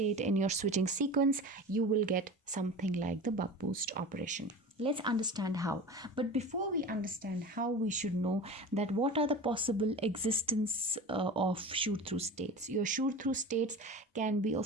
in your switching sequence, you will get something like the buck boost operation. Let's understand how. But before we understand how, we should know that what are the possible existence of shoot through states. Your shoot through states can be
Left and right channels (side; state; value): both; normal; correlation 0.33